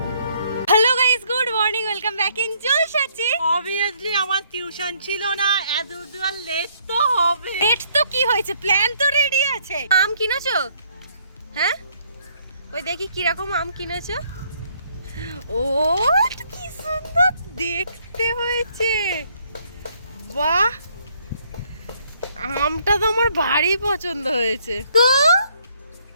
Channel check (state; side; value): inverted; both; correlation -0.67